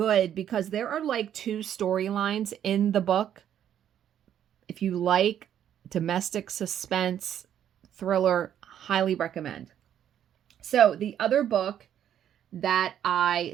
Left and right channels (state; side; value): quieter; left; 10.1 dB